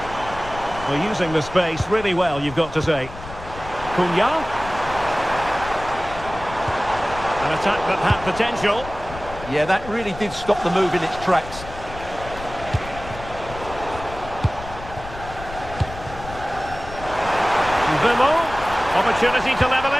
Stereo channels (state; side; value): noise; left; rumble, 13 dB below the sound